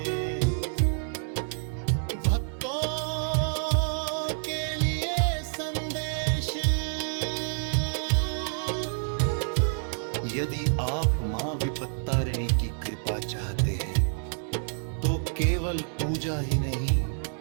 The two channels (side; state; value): left; silent; digital silence